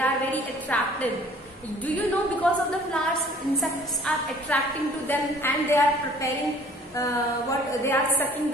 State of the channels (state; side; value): normal; both; correlation 0.53